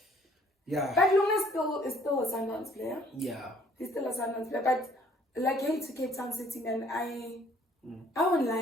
yeah. But Lunga is still a Sundowns player. Yeah. He's still a Sundowns player, but like, hey, to Cape Town City, man, I won't lie,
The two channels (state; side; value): normal; both; correlation 0.60